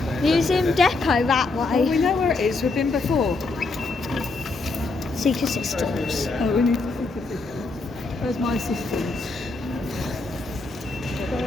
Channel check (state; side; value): quieter; right; 3.5 dB